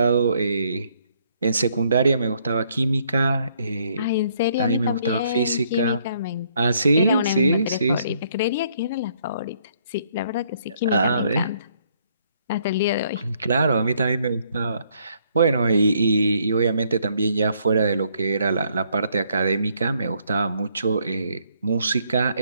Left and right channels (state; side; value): inverted; both; correlation -0.68